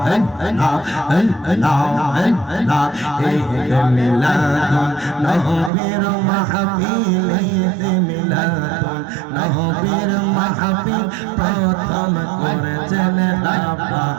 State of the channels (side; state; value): left; drops out; at 5.7 s